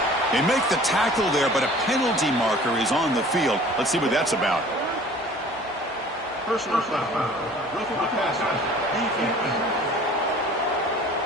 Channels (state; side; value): normal; both; correlation 0.48